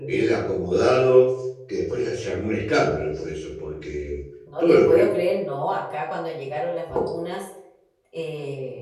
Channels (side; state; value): both; identical; correlation 1.00